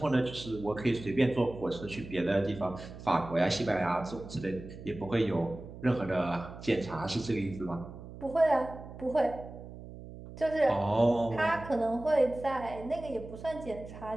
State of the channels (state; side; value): noise; right; hum, 14 dB below the sound